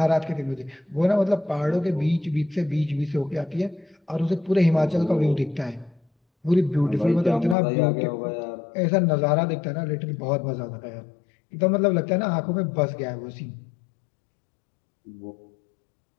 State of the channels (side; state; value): right; drops out; at 7.6 s